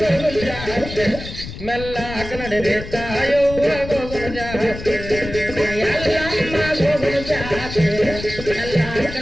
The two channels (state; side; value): noise; left; rumble, 10 dB below the sound